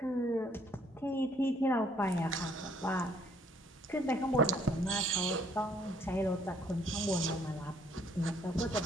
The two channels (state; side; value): normal; both; correlation 0.63